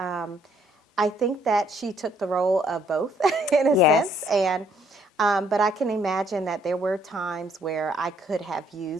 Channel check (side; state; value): both; normal; correlation 0.66